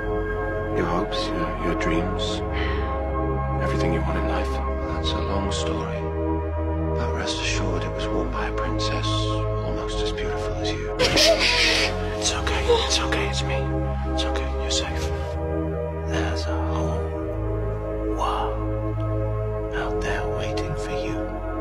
Your hopes, your dreams, everything you want in life. That's a long story. But rest assured it was worn by a princess almost as beautiful as you. It's okay, it's me. It's okay, you're safe. There's a whole world out there waiting for you.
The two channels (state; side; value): identical; both; correlation 1.00